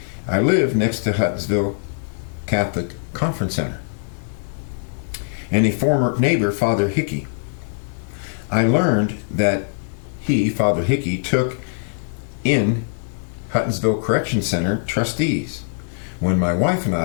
I live next to Huttonsville Catholic Conference Center and a former neighbor, Father Hickey. I learned that he, Father Hickey, took in Huttonsville Correction Center trustees when my wife and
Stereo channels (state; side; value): silent; right; digital silence